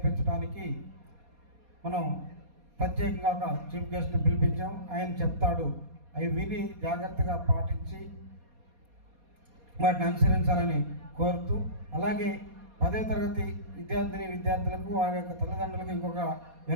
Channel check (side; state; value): left; late; 4.2 ms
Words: మనం ప్రత్యేకంగా ఒక చీఫ్ గెస్ట్ని పిలిపించాం. ఆయన చెప్తాడు, అవి విని జాగ్రత్తగా పాటించి వాటిని అనుసరించాలని కోరుతూ, అలాగే 10వ తరగతి విద్యార్థులకు వారి యొక్క తల్లిదండ్రులకు ఇంకొక